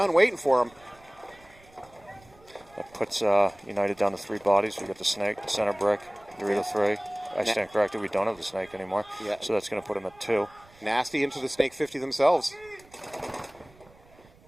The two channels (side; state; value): right; noise; rumble, 27 dB below the sound